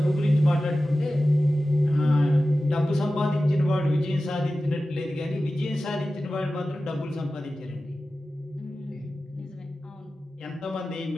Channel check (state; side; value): normal; both; correlation 0.95